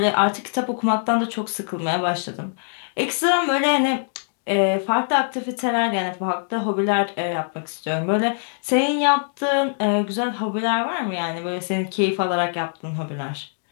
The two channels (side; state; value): right; silent; digital silence